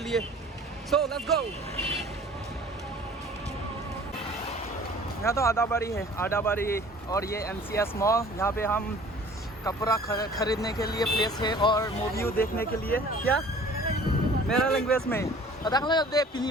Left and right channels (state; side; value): normal; both; correlation 0.49